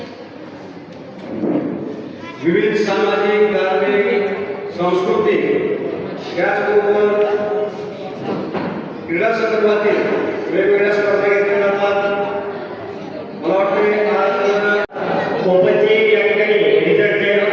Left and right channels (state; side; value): identical; both; correlation 1.00